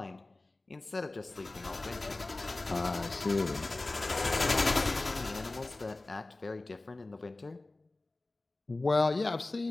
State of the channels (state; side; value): quieter; right; 3.0 dB